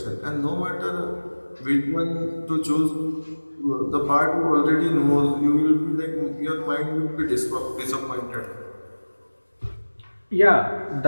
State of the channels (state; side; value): inverted; both; correlation -1.00